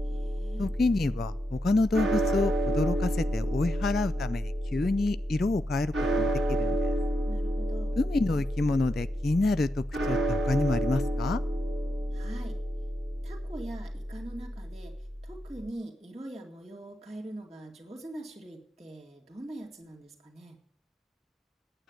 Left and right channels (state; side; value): normal; both; correlation 0.85